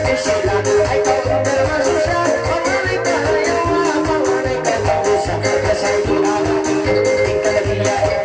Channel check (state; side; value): identical; both; correlation 1.00